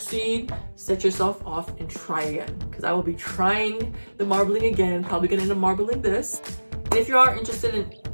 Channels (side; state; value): both; inverted; correlation -1.00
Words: set yourself off and try again, because I will be trying the marbling again, probably gonna end up marbling this. And if you are interested in